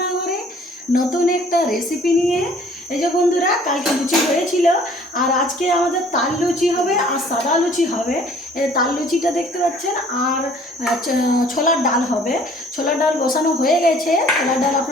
নতুন একটা রেসিপি নিয়ে। এই যে বন্ধুরা, কালকে লুচি হয়েছিল আর আজকে আমাদের তাল লুচি হবে আর সাদা লুচি হবে। এই তাল লুচিটা দেখতে পাচ্ছেন, আর ছোলার ডাল হবে। ছোলার ডাল বসানো হয়ে গেছে, ছোলার ডাল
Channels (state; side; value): normal; both; correlation 0.55